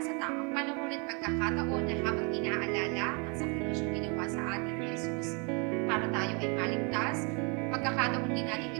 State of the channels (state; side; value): quieter; left; 33.7 dB